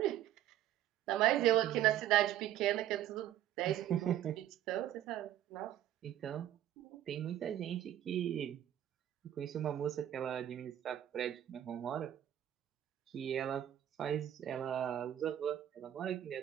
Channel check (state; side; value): quieter; left; 11.9 dB